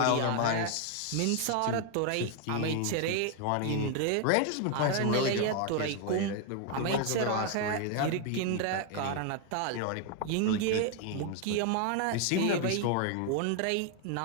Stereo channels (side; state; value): both; different; correlation 0.01